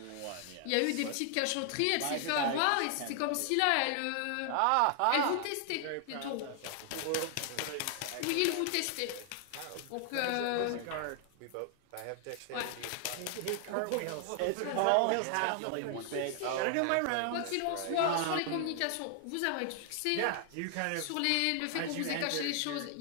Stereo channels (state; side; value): different; both; correlation 0.00